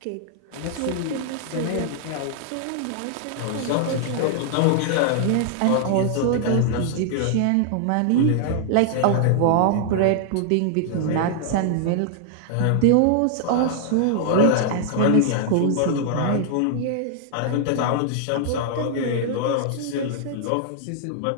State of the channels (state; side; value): different; both; correlation -0.01